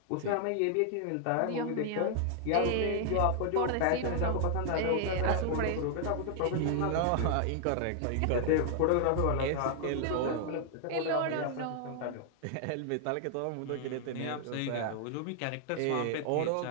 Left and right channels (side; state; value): both; different; correlation 0.00